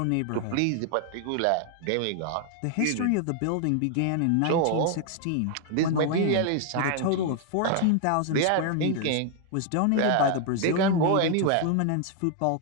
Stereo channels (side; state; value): both; different; correlation 0.00